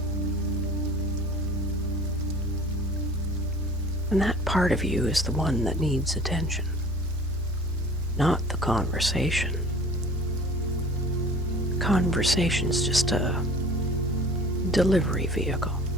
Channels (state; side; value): noise; right; rumble, 21 dB below the sound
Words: And that part of you is the one that needs attention, not the conversation. Conversation's just a delivery vehicle.